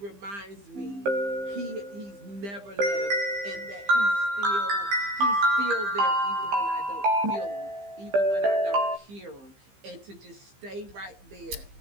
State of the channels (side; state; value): left; late; 15 ms